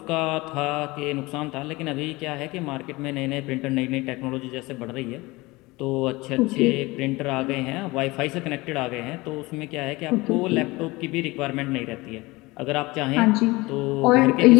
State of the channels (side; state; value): right; quieter; 22.0 dB